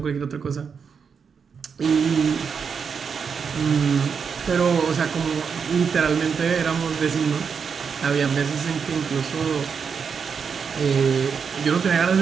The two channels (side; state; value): left; quieter; 6.2 dB